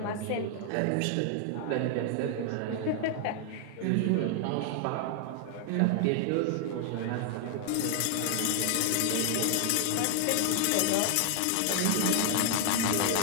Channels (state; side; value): different; both; correlation 0.00